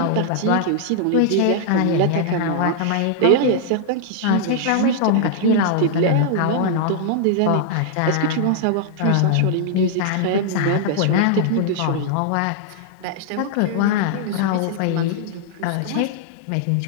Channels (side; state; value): both; different; correlation -0.01